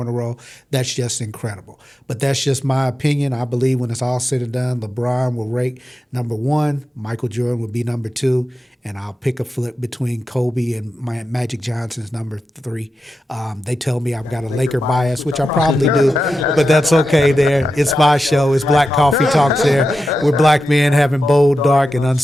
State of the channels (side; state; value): both; normal; correlation 0.90